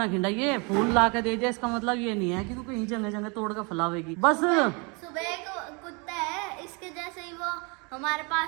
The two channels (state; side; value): quieter; left; 31.1 dB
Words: खिंडाइए, फूल ला के दे दिया इसका मतलब ये नहीं है कि तू कहीं जगह जगह तोड़ कर फैलावेगी बस। सुबह एक कुत्ता है इसके जैसे ही, वो हमारे